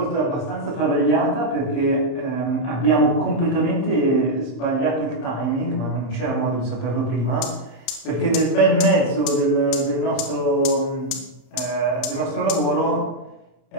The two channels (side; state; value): right; late; 31 ms